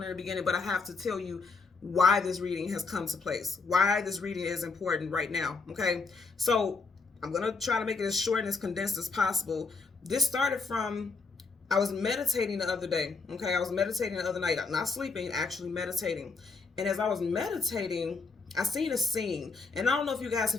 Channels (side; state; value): right; quieter; 4.3 dB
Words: in the beginning, but I have to tell you why this reading has come to place, why this reading is important right now, okay? So I'm going to try to make it as short and as condensed as possible. This started from, I was meditating the other day, okay? I was meditating the other night, not sleeping, actually meditating. And as I was meditating, I seen a scene, and I don't know if you guys